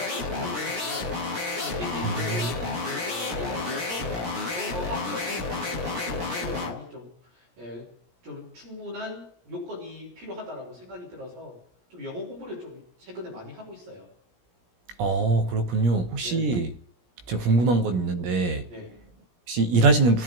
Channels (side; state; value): left; late; 17 ms